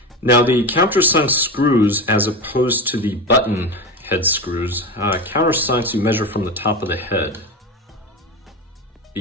Now the countersunk screws, as opposed to the button head screws, countersunks you measure from the top of the head.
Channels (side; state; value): both; normal; correlation 0.22